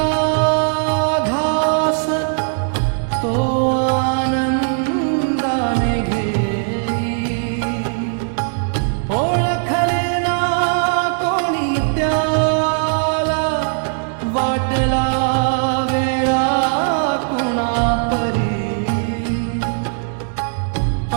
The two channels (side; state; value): left; silent; digital silence